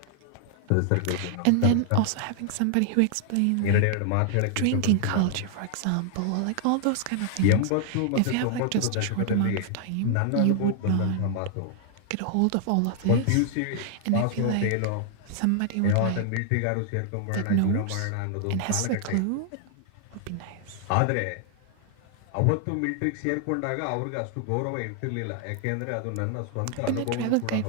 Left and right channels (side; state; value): both; different; correlation 0.00